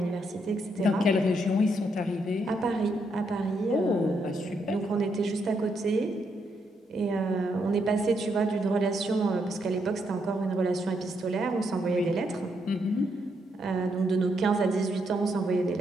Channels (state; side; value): normal; both; correlation 0.77